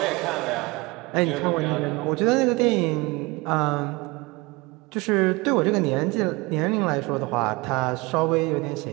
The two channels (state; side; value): quieter; left; 24.4 dB